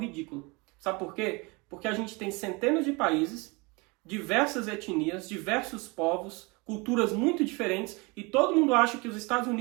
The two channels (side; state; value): left; quieter; 27.2 dB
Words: Sabe por quê? Porque a gente tem centenas de países, diversas etnias, diversos povos, culturas muito diferentes. E todo mundo acha que os Estados